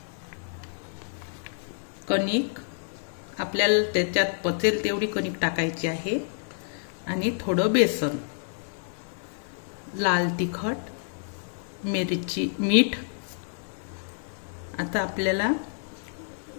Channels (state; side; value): silent; right; digital silence